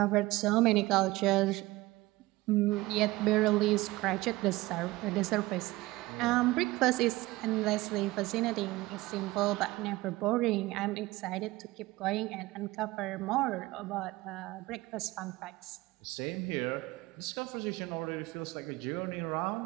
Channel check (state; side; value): quieter; left; 19.4 dB